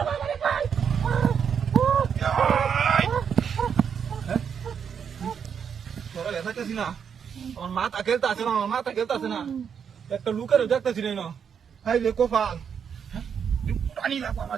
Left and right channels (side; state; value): left; quieter; 7.3 dB